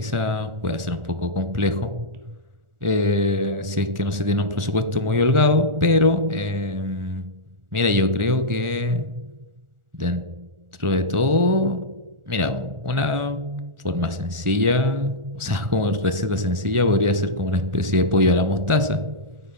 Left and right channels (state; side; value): late; left; 1.4 ms